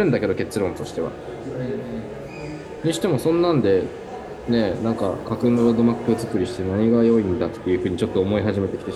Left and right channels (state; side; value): identical; both; correlation 1.00